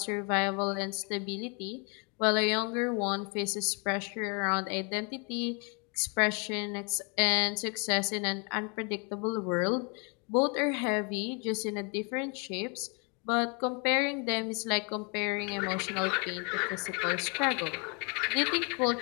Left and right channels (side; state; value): right; quieter; 34.6 dB